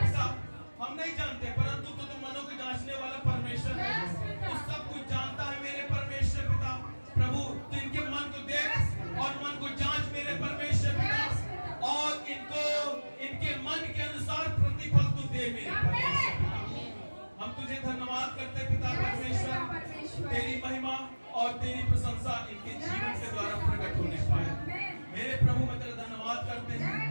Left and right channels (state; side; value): inverted; both; correlation -1.00